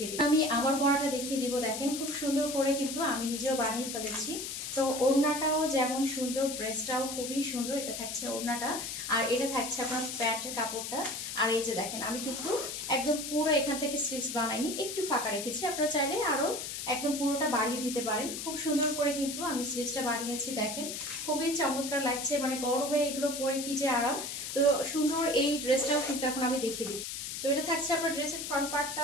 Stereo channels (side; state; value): left; noise; hiss, 6 dB below the sound